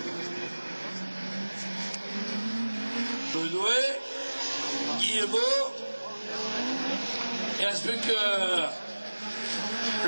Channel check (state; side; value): inverted; both; correlation -1.00